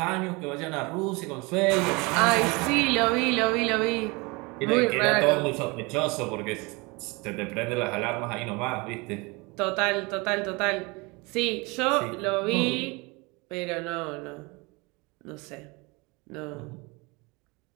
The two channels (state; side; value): quieter; left; 26.6 dB